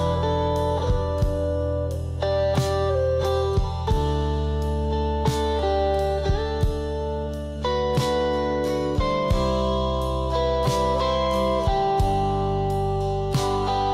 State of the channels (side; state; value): both; identical; correlation 1.00